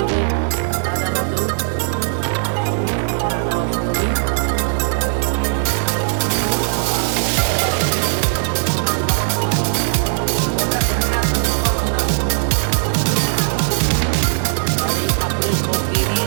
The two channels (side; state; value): left; silent; digital silence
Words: রাধা মাধব, রাধা অষ্টমী। আর এই ঠাকুরের ভোগ দিয়ে